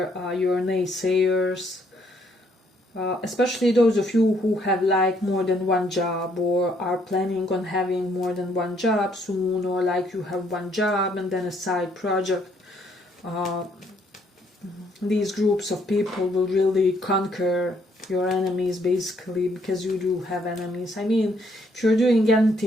your naysayers, especially those of you who have like more than one job, or are planning on having more than one job soon, or like you have one job and then a side project. These groups of people will really conquer your enemies, basically, because you do have enemies. I mean, if you're doing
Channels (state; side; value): normal; both; correlation 0.69